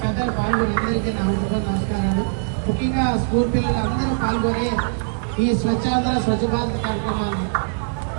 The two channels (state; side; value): silent; left; 64 dB below the other